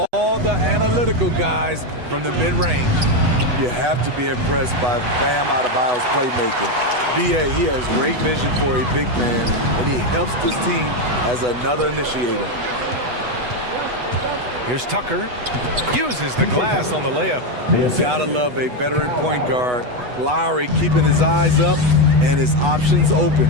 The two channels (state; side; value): late; left; 8.1 ms